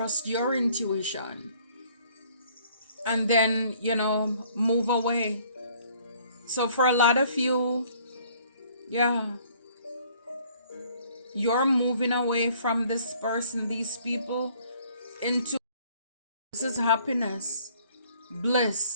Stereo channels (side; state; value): both; inverted; correlation -0.59